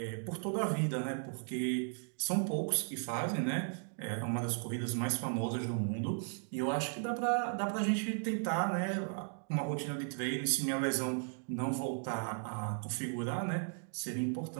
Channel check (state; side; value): silent; left; 54 dB below the other